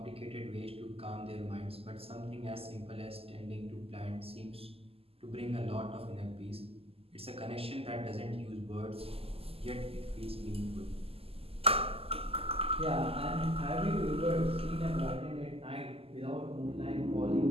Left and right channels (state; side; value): late; left; 0.28 ms